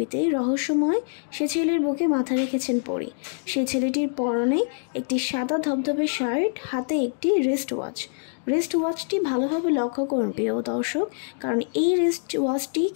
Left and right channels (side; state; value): right; silent; digital silence